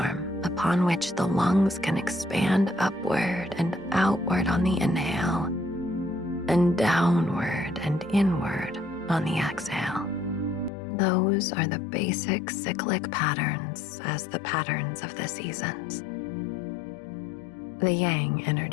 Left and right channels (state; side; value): drops out; right; at 10.7 s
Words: upon which the lungs can expand upward and outward on the inhale, and downward and inward on the exhale. Those are the basic cyclic patterns as the patterns of the seasons. The yang